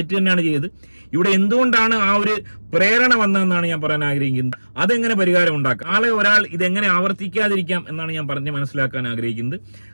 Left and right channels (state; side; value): inverted; both; correlation -1.00